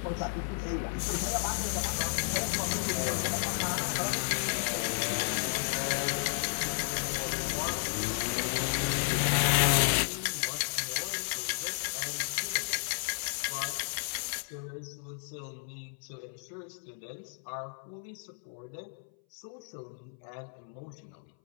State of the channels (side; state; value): right; silent; 56 dB below the other